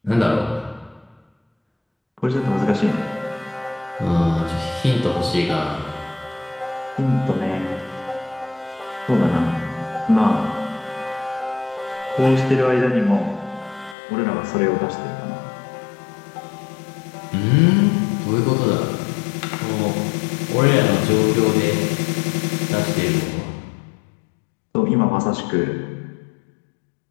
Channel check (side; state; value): right; drops out; at 14.0 s